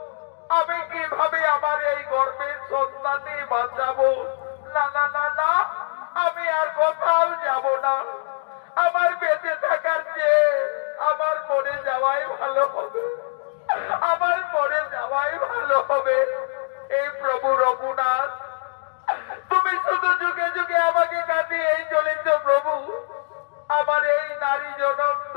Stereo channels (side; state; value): right; silent; digital silence